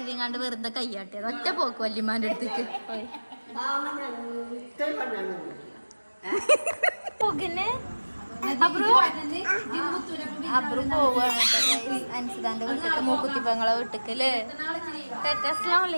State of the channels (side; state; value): both; inverted; correlation -1.00